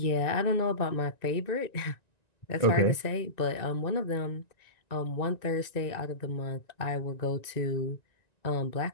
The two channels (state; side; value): late; right; 1.9 ms